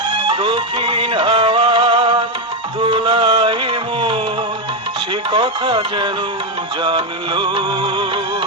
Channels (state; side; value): normal; both; correlation 0.06